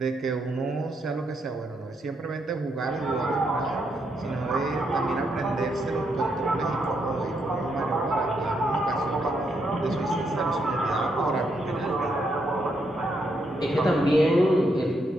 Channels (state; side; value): normal; both; correlation 0.78